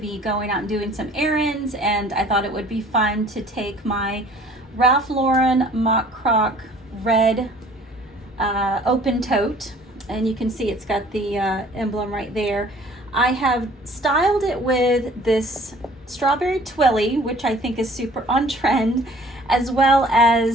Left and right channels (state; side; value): normal; both; correlation 0.52